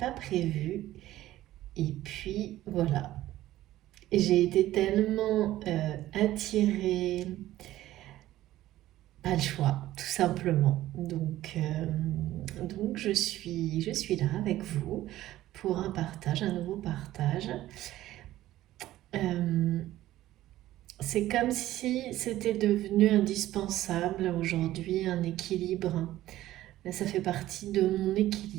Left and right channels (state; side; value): quieter; left; 14.8 dB